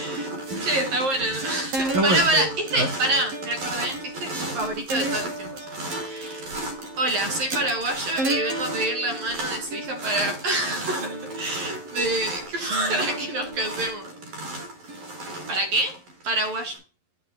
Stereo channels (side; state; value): left; late; 11 ms